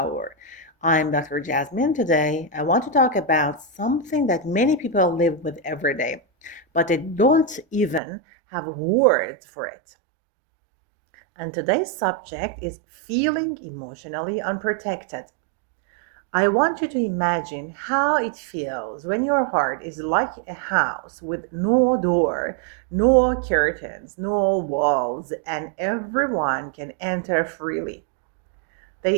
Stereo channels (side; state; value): left; drops out; at 8.0 s